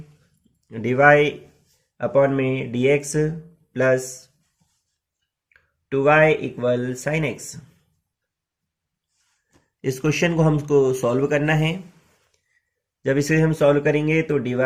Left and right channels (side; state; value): both; identical; correlation 1.00